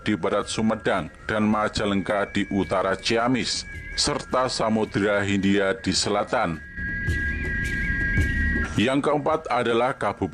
di barat Sumedang dan Majalengka di utara Ciamis, serta Samudra Hindia di selatan. Yang keempat adalah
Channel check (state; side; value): identical; both; correlation 1.00